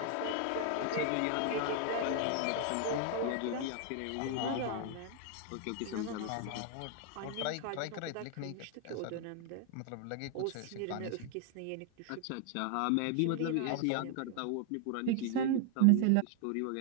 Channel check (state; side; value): different; both; correlation 0.00